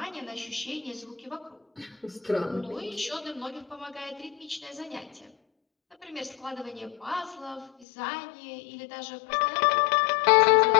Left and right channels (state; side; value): drops out; right; at 7.9 s